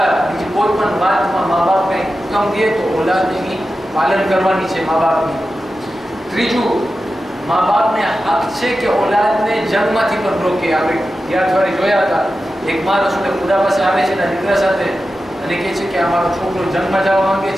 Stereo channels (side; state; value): both; normal; correlation 0.92